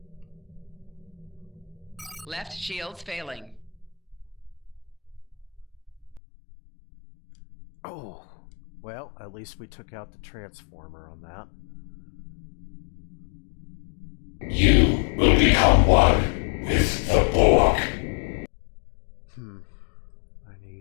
Left shields failing. Oh, well, at least we took out the transformer on that. You will become one with the Borg. I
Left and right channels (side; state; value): right; drops out; at 6.2 s